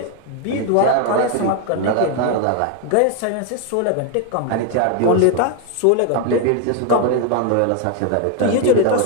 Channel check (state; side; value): different; both; correlation 0.01